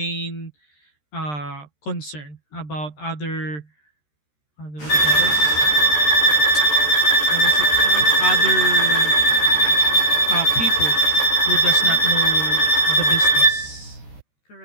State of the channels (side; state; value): right; late; 13 ms